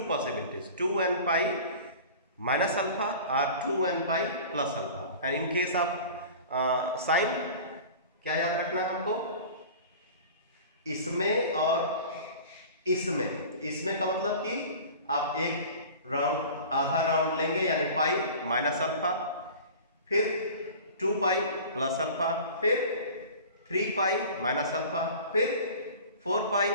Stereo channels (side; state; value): both; inverted; correlation -0.39